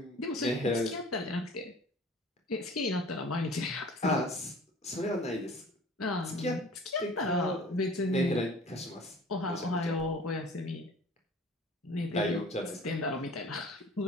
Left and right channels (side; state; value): both; normal; correlation 0.46